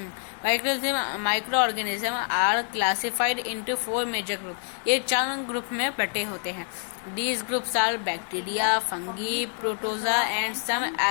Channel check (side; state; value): right; silent; 58 dB below the other